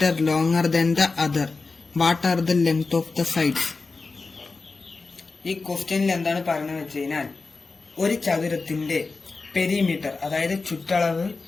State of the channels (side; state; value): right; quieter; 4.0 dB